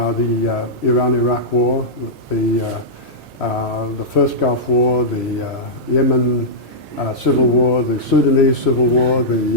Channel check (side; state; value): both; normal; correlation -0.11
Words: Iran-Iraq War, the first Gulf War, the Yemen Civil War, the Sudanese Civil War,